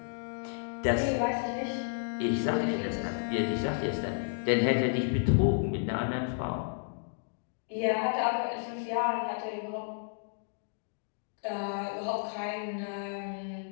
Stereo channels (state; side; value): silent; right; digital silence